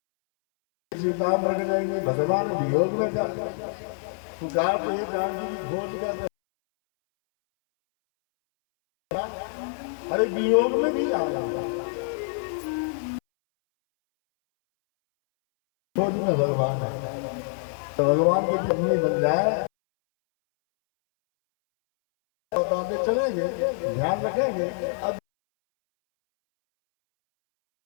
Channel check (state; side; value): silent; right; 61 dB below the other